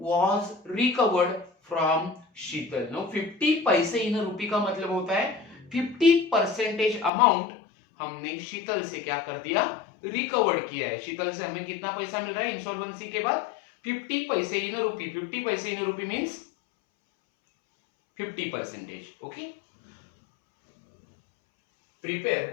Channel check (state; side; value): drops out; right; at 7.1 s